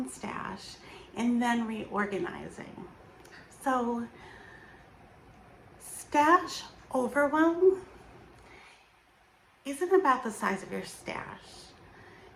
stash and then reorganizing. So stash overwhelm isn't about the size of your stash.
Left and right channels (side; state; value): both; identical; correlation 1.00